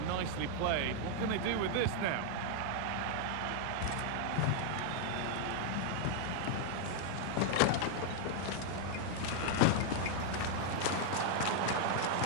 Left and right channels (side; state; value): both; different; correlation 0.00